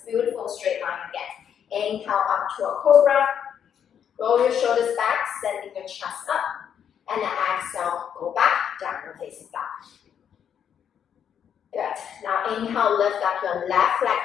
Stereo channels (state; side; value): quieter; right; 8.5 dB